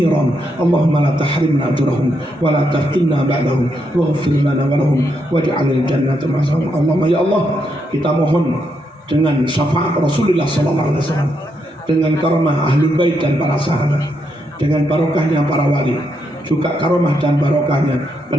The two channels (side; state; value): both; normal; correlation 0.79